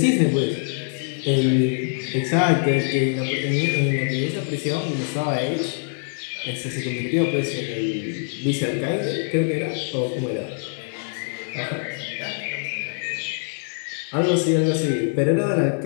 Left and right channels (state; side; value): silent; right; 59 dB below the other